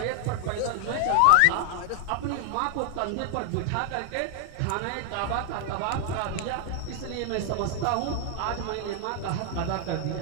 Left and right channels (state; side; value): different; both; correlation 0.00